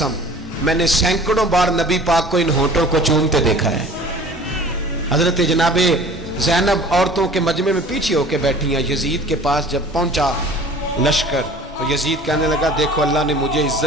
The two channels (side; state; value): both; normal; correlation 0.45